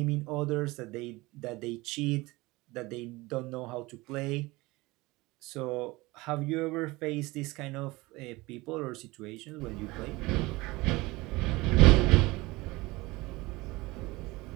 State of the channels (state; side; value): quieter; left; 21.6 dB